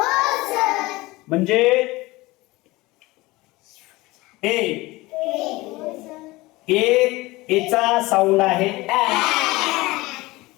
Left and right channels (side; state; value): right; quieter; 20.8 dB